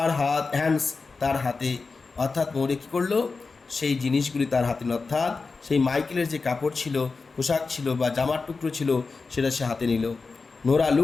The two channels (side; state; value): right; quieter; 4.3 dB